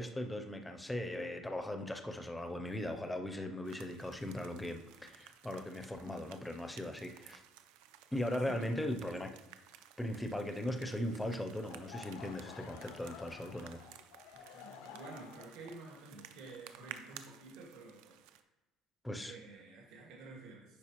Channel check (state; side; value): normal; both; correlation 0.79